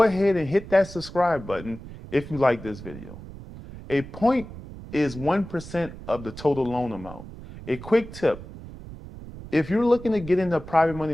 ahead and hit that subscribe button if you like this video. A point is 1% of the total loan amount. A quick tip, if you're looking to get into the private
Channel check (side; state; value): right; noise; rumble, 14 dB below the sound